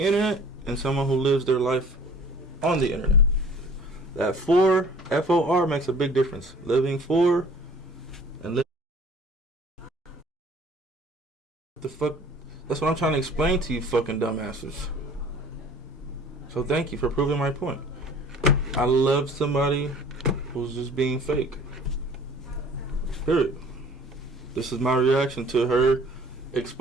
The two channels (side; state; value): both; normal; correlation 0.49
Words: internet and someone who lives their life on the internet. That for, F-O-R, makes a big difference. Living for and living. The fuck? That's what I'm trying to explain to you fucking dumbasses. So thank you for proving my point. I love somebody who's just being fake. Period. This is my reaction to her